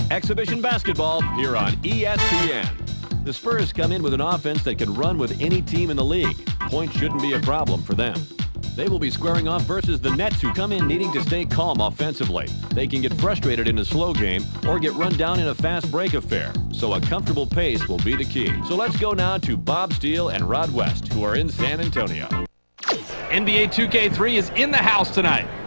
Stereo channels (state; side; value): inverted; both; correlation -1.00